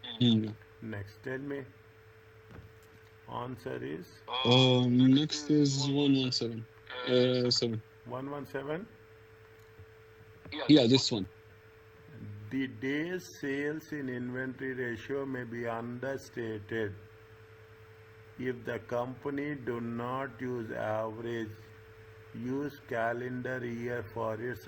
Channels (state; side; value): identical; both; correlation 1.00